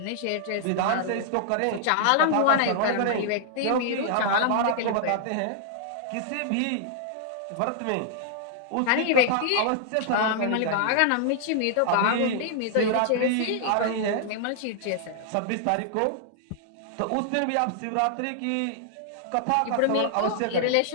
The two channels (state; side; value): different; both; correlation -0.01